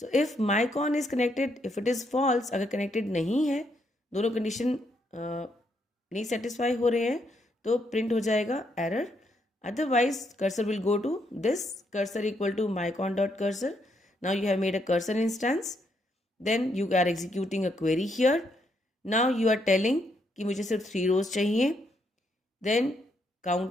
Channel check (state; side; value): normal; both; correlation 0.76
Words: if mycon is connected, if it is false, अगर connected नहीं है, दोनों condition नहीं satisfy हो रहे हैं, तो print हो जाएगा error. Otherwise, cursor will go to this cursor equal to mycon.cursor. Now you have made a cursor instance. Then you are executing a query here. Now you are telling कि मुझे सिर्फ 3 rows चाहिए. Then